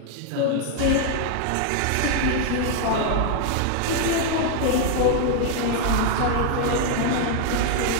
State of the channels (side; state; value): both; different; correlation 0.00